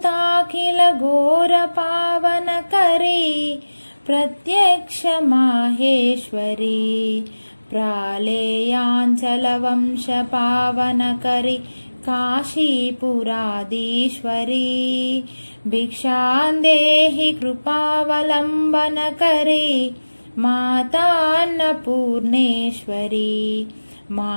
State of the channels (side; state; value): both; inverted; correlation -1.00